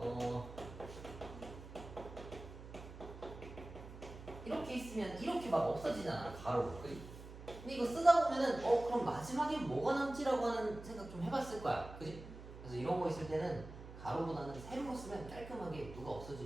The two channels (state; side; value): noise; right; hum, 14 dB below the sound